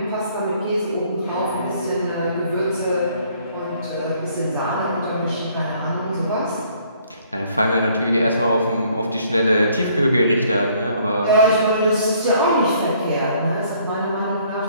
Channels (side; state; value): both; inverted; correlation -0.62